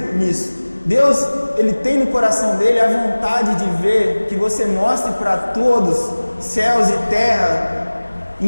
nisso. Deus, Ele tem no coração dele a vontade de ver que você mostre para todos, céus e terra,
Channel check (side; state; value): both; inverted; correlation -1.00